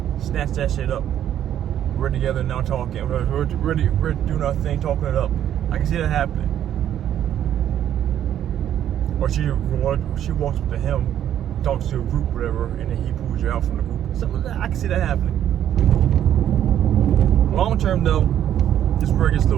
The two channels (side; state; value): left; quieter; 10.7 dB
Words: Snatch that shit up. We're together now talking. We're doing our thing, talking it up. I can see that happening. Or she walks up to him, talks to a group, whatever, and then he pulls you out from the group. Something like that. I can see that happening. Long term though, this where it gets a